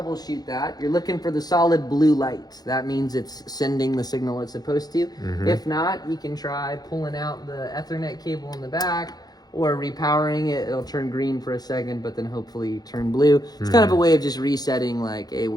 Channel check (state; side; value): late; right; 0.19 ms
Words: that. You're looking for the solid blue light. That means it's sending the signal it's supposed to. If not, you can try pulling out the Ethernet cable in the back, or repowering it. It'll turn green for a second, but then hopefully turn blue. It's kind of a way of just resetting, like, hey,